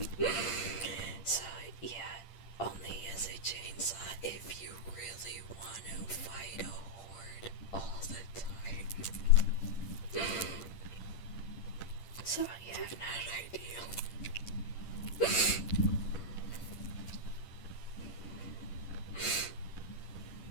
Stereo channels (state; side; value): late; right; 8.8 ms